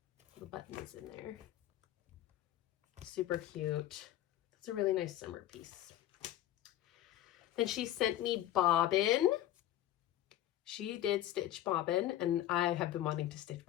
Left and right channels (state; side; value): quieter; right; 13.0 dB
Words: The button is in there. Super cute. That's a really nice summer piece. Then she sent me Bobbin. She did stitch Bobbin, and I have been wanting to stitch